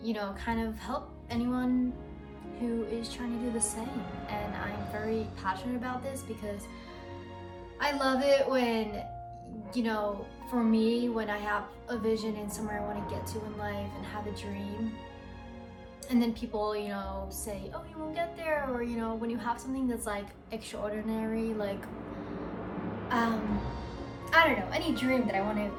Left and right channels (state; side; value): identical; both; correlation 1.00